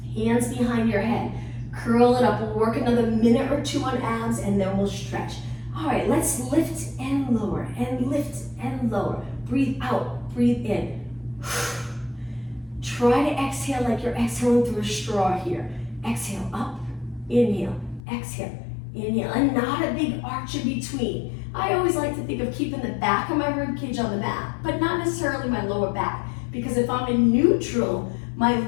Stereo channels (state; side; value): drops out; right; at 18.0 s